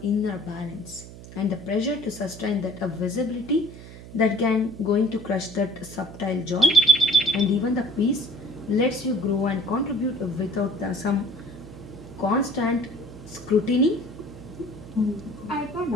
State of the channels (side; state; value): right; noise; hum, 16 dB below the sound